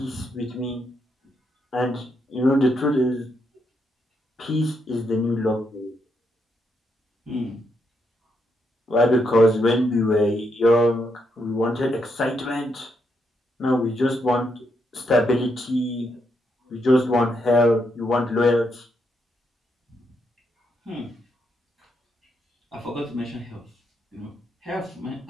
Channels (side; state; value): both; normal; correlation 0.79